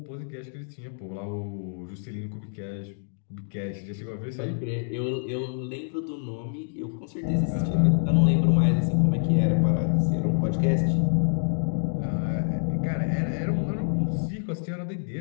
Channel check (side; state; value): right; silent; digital silence